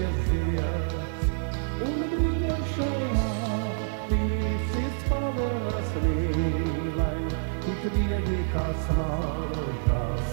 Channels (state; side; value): silent; left; digital silence